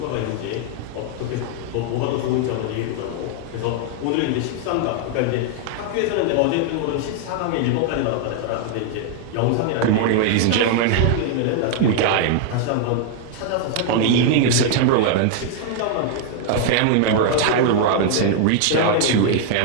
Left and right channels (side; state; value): both; different; correlation 0.00